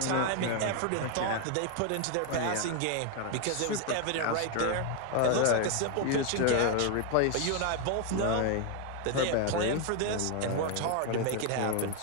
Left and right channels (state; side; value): different; both; correlation 0.01